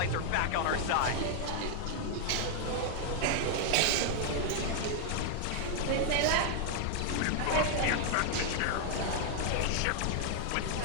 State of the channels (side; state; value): both; different; correlation 0.00